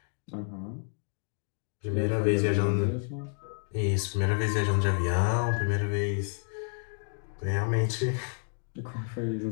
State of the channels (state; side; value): silent; right; 58 dB below the other